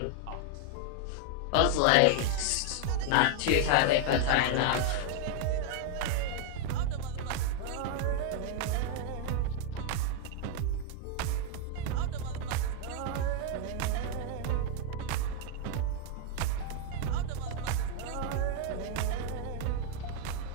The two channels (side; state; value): both; different; correlation 0.00